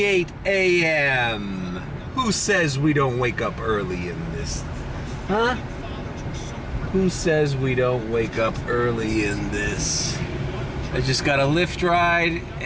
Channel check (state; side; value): identical; both; correlation 1.00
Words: a.m. Who says we don't wake up early in this? Huh? Who says we don't wake up early in this? I just got a Lyft ride